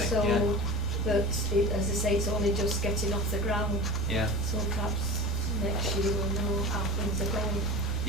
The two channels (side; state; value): left; noise; rumble, 6 dB below the sound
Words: So Yeah. that, as I say, it's only just getting off the ground. Yeah. So perhaps next year we'll know how things are going.